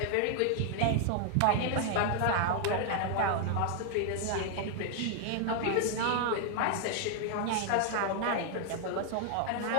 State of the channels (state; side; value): different; both; correlation 0.00